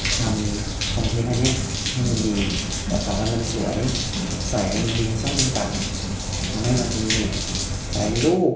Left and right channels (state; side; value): identical; both; correlation 1.00